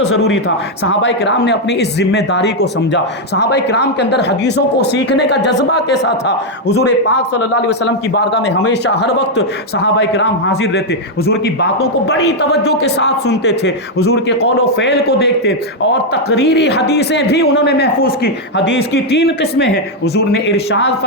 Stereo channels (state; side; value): normal; both; correlation 0.00